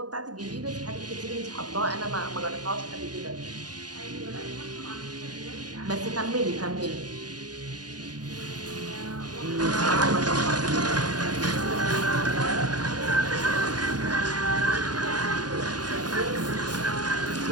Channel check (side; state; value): left; late; 0.69 ms